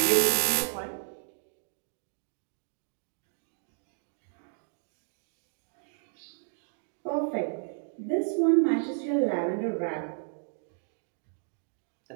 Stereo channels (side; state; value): left; silent; digital silence